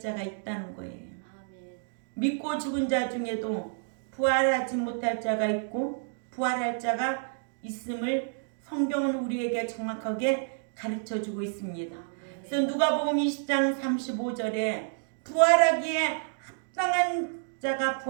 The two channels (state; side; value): silent; left; digital silence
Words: 있다는 거예요. 아멘. 믿고 죽은 자 중에도 부활하지 못할 자가 있고 부활할 자가 있음을 성경은 우리에게 정확하게 가르쳐주고 있습니다. 그래서 누가복음 20장 35절에 부활하기에 합당한 자가